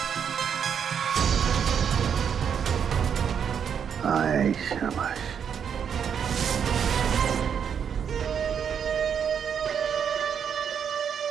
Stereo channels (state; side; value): quieter; left; 7.7 dB